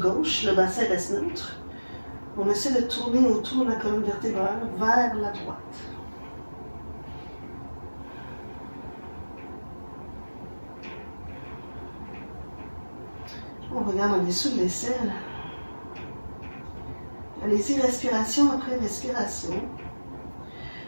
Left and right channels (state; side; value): inverted; both; correlation -1.00